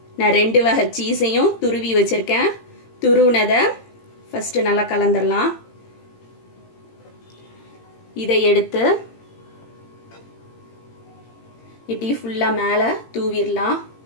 நான் 2 வகை சீஸையும் துருவி வச்சுருக்கேன். துருவினதை ஃபஸ்ட்டு நல்லா கலந்துடலாம். இதை எடுத்து இப்படி ஃபுல்லாக மேலே தூவிடலாம்.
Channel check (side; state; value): right; late; 18 ms